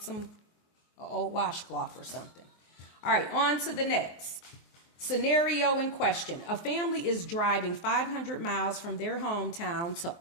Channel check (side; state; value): right; late; 23 ms